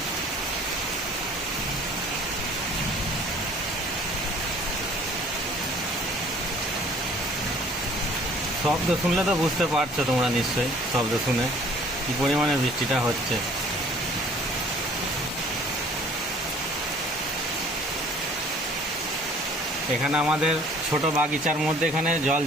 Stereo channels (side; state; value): both; normal; correlation 0.54